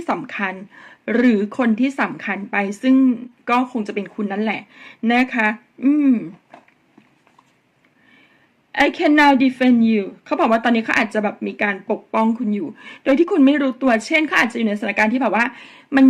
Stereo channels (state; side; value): identical; both; correlation 1.00